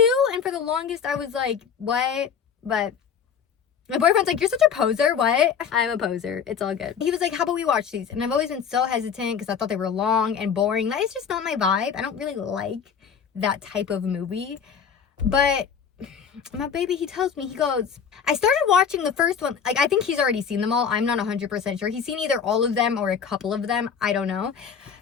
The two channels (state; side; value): quieter; right; 7.1 dB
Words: And for the longest I was like, what? But my boyfriend's like, "You're such a poser." What? I'm a poser. It's all good. He was like, "How about we watch these?" And I've always been so hesitant because I thought they were long and boring. That is just not my vibe. I don't really like that type of movie. But my baby, he tells me, he goes, I started watching the first one. Like, I think he's already seen them all. I'm not 100% sure. He's seen either all of them or a couple of them. I don't know.